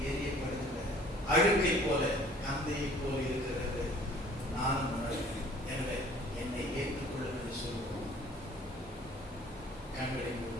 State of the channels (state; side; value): normal; both; correlation 0.53